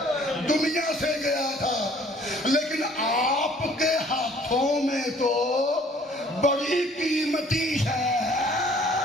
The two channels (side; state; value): both; normal; correlation 0.56